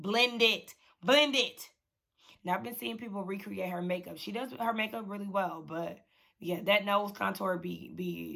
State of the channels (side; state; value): both; identical; correlation 1.00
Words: And I've been seeing people recreate her makeup. She does her makeup really well, but yeah, that nose contour